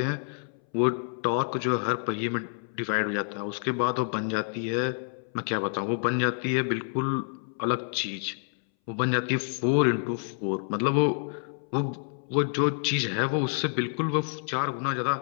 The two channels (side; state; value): right; silent; 59 dB below the other